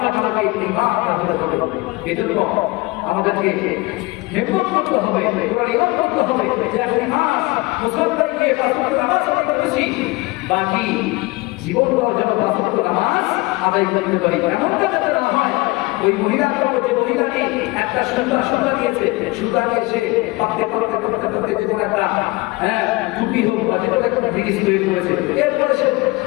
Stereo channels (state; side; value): quieter; right; 22.9 dB